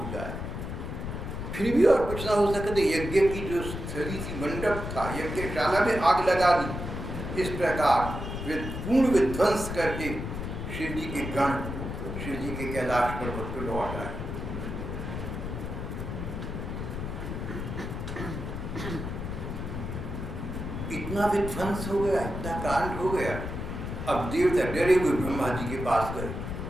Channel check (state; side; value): noise; left; rumble, 5 dB below the sound